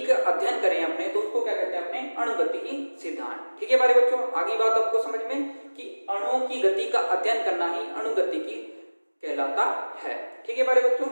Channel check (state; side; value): inverted; both; correlation -1.00